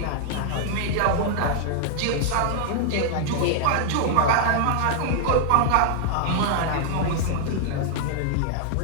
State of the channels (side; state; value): both; different; correlation -0.01